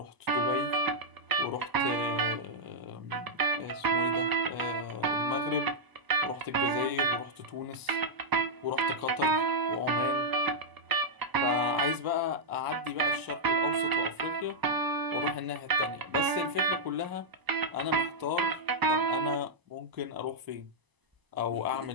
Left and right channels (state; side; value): late; left; 1.0 ms